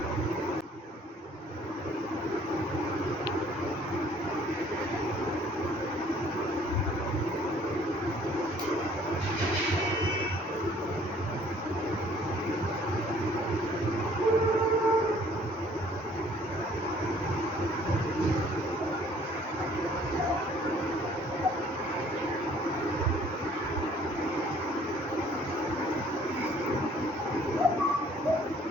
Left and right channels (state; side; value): normal; both; correlation 0.58